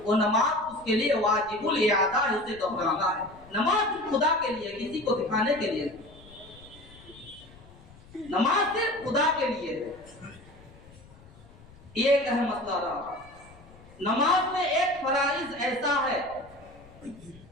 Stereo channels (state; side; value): noise; left; rumble, 23 dB below the sound